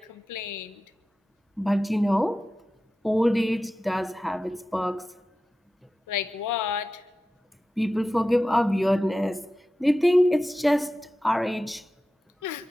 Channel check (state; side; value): normal; both; correlation 0.94